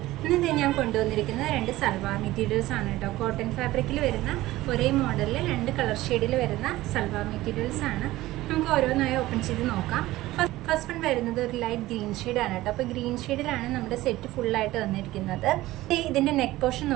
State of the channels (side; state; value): left; quieter; 17.1 dB